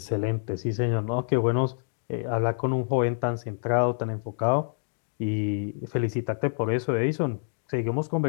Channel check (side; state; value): right; silent; digital silence